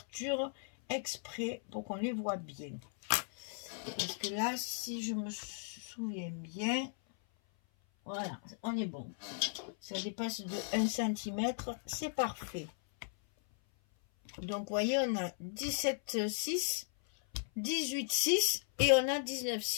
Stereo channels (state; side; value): silent; right; 53 dB below the other